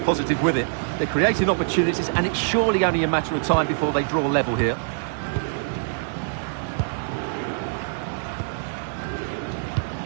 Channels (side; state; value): left; silent; digital silence